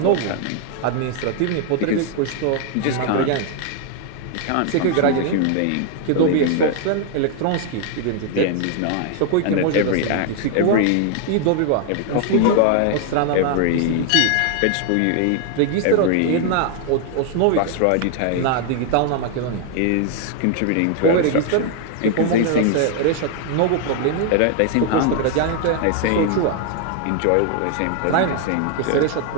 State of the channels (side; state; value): both; different; correlation 0.00